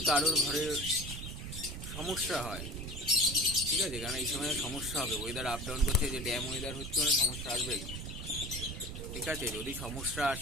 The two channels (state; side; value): noise; right; rumble, 7 dB below the sound